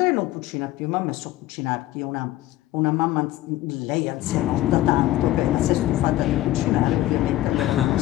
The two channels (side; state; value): right; quieter; 15.4 dB